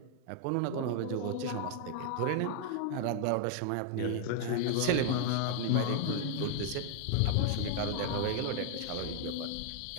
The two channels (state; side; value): different; both; correlation 0.00